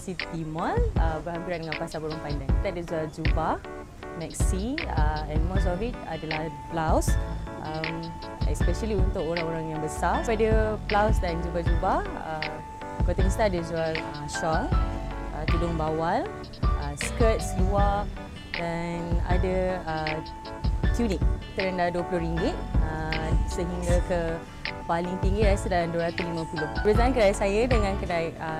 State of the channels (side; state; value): both; identical; correlation 1.00